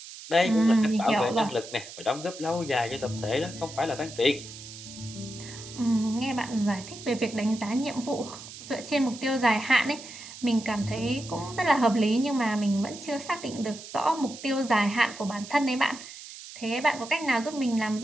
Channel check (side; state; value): right; noise; hiss, 14 dB below the sound